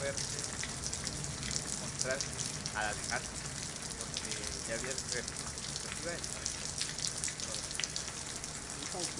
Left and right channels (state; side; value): identical; both; correlation 1.00